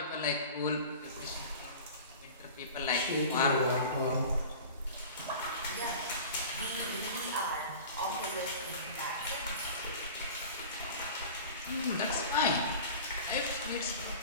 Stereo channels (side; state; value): both; inverted; correlation -0.38